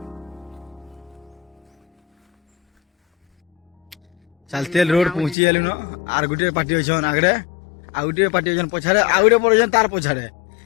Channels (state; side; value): drops out; right; at 5.4 s